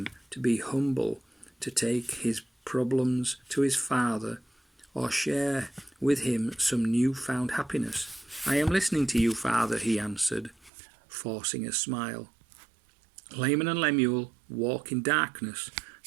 to be humble, to take his problems to his father, or share with him some new-found happiness. "I am listening to you, Father," he answered, forcing a smile. Laman and Lemuel walk in darkness.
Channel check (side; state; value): left; drops out; at 10.7 s